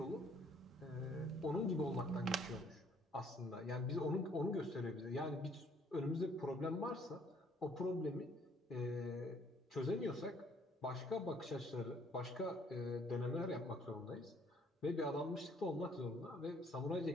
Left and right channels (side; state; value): both; normal; correlation 0.62